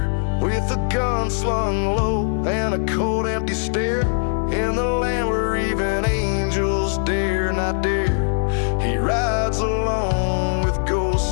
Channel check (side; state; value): right; silent; 58 dB below the other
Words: with a gun slung low and a cold empty stare, in the land where even angels dare not dare. He rides alone with